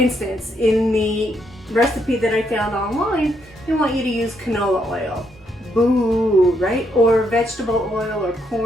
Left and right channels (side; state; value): both; normal; correlation 0.76